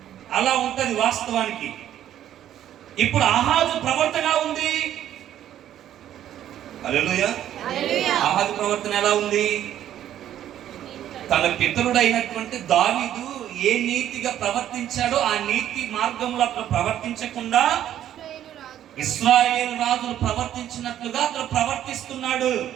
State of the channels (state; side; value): quieter; left; 11.4 dB